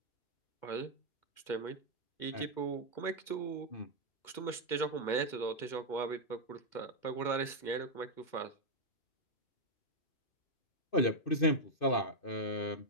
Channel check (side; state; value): right; late; 2.1 ms